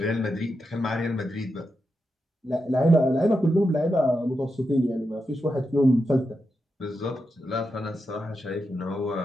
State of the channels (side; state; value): both; normal; correlation 0.87